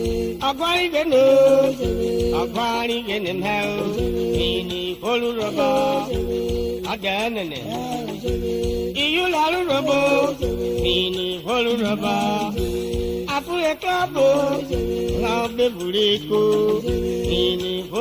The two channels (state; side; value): identical; both; correlation 1.00